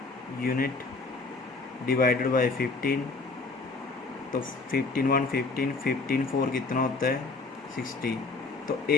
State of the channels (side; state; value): right; quieter; 3.8 dB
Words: यूनिट डिवाइडेड बाय 15। तो 15 1 15, 15 4 कितना होता है, 60। तो